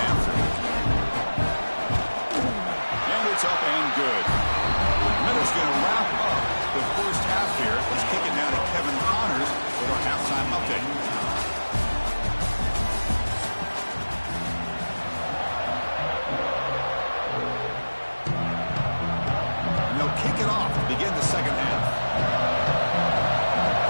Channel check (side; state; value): both; inverted; correlation -1.00